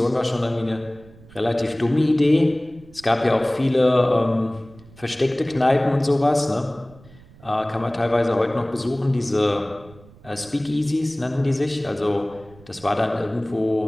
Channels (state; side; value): noise; right; rumble, 23 dB below the sound